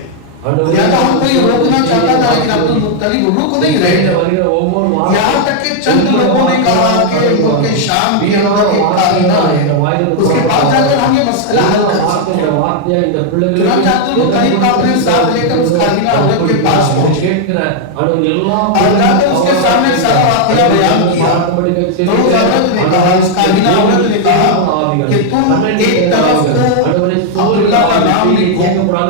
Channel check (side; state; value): both; different; correlation 0.00